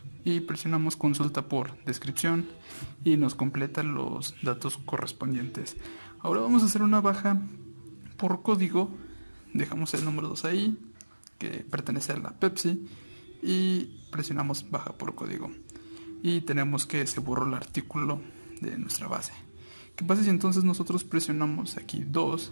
Y presionamos consulta por descripción y nos completa los datos correspondientes. Ahora vamos a hacer una baja por código. Dejamos el número 2 ahí, que pertenece a la Pepsi, y presionamos baja por código. Y tenemos que se borró el artículo de nuestra base. ¿Qué pasa si entonces nosotros presionamos aquí 2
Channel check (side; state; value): both; inverted; correlation -1.00